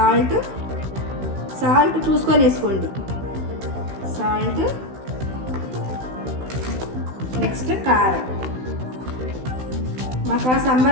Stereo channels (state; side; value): late; left; 16 ms